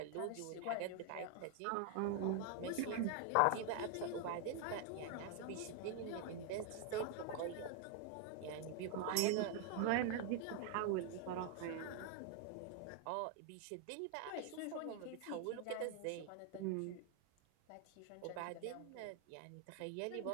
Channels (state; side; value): different; both; correlation 0.00